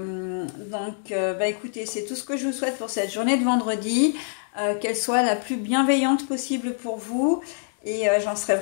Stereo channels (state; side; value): silent; right; digital silence